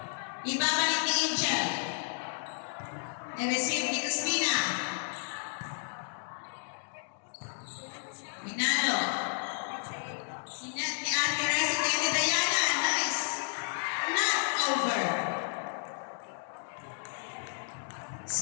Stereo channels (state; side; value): silent; right; digital silence